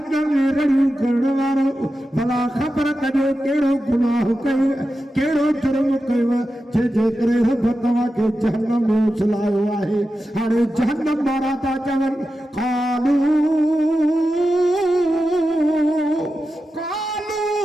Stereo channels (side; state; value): both; normal; correlation 0.91